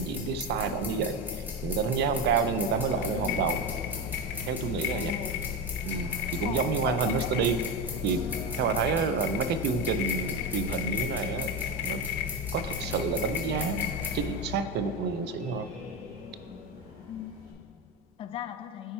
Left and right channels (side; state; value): both; normal; correlation 0.17